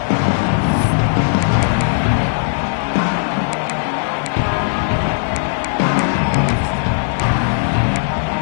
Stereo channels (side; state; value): right; silent; digital silence